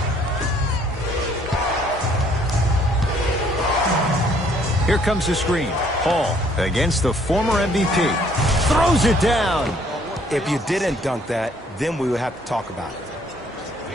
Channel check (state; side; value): normal; both; correlation 0.63